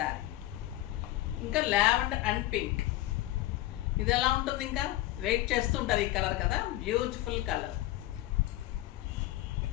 ఇంకా లావెండర్ అండ్ పింక్, ఇది ఎలా ఉంటుంది? ఇంకా వెయిట్ చేస్తుంటారు ఈ కలర్ కదా, beautiful colour.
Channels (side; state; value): right; quieter; 15.9 dB